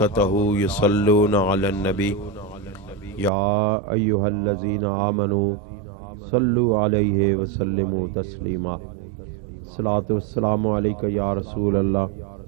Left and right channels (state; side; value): drops out; left; at 3.3 s